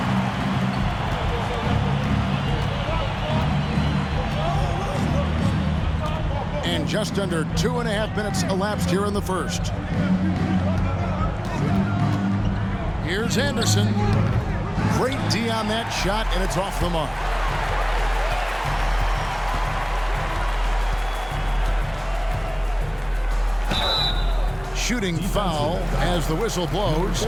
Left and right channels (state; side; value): identical; both; correlation 1.00